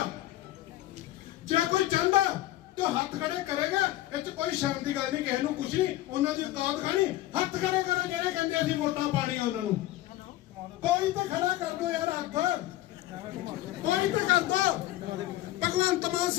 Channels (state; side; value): quieter; right; 15.6 dB